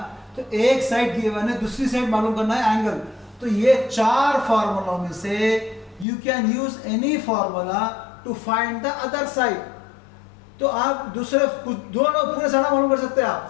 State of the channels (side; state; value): right; drops out; at 6.1 s